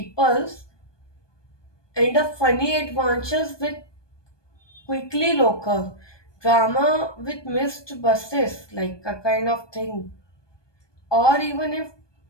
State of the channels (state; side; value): late; right; 1.2 ms